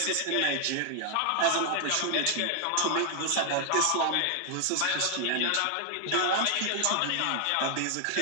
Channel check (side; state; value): both; different; correlation 0.00